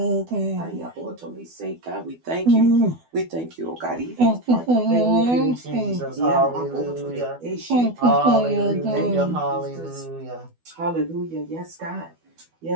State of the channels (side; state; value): left; late; 12 ms